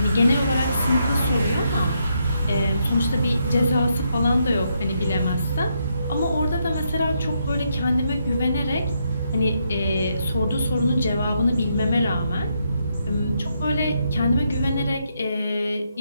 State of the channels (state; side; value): inverted; both; correlation -0.78